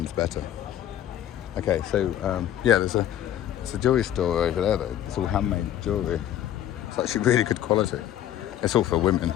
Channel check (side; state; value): right; quieter; 11.6 dB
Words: better. Okay, so yeah, there's a jewellery store over there though. It's all handmade jewellery. It's actually really good quality. It's all for women,